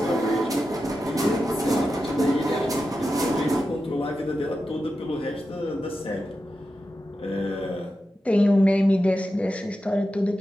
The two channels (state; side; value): normal; both; correlation 0.90